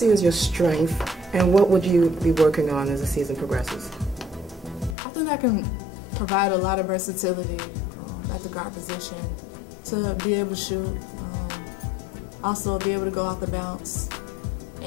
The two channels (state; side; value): drops out; right; at 5.0 s